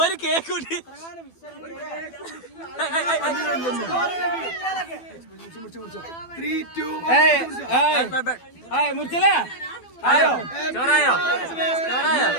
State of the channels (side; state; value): right; late; 12 ms